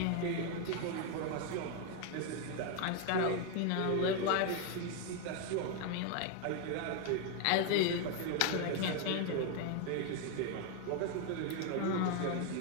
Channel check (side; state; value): both; different; correlation 0.01